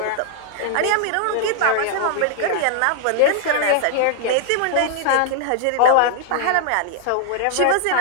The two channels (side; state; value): both; different; correlation 0.00